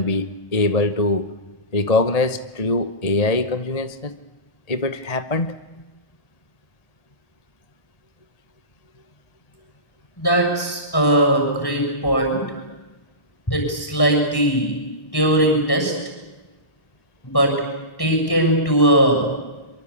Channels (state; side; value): late; right; 1.1 ms